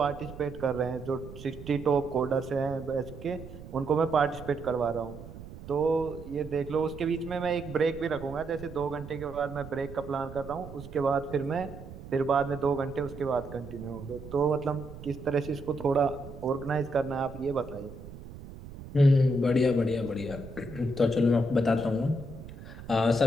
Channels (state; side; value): noise; right; rumble, 14 dB below the sound